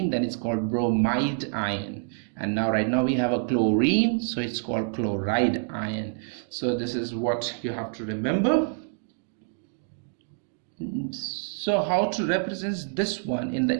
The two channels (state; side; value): silent; left; digital silence